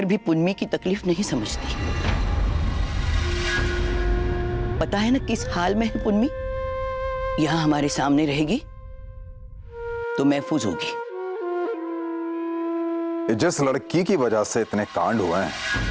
भी पुन्नी की तकलीफ नहीं समझती। पता है ना किस हाल में है पुन्नी? यहाँ हमारे सामने रहेगी तो महफूज होगी। जिस लड़की की वजह से इतने कांड हुए हैं,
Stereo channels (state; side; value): identical; both; correlation 1.00